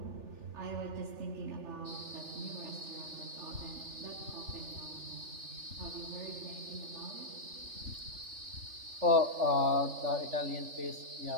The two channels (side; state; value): left; late; 3.4 ms